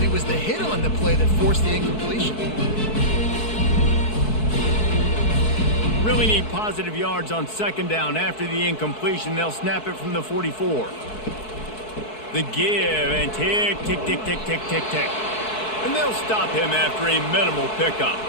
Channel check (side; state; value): right; late; 4.6 ms